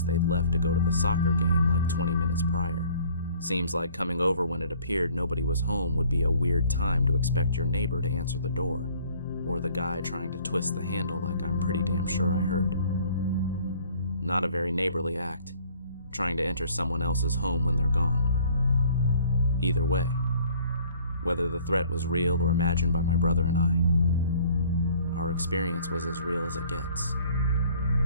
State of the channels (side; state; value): both; inverted; correlation -0.56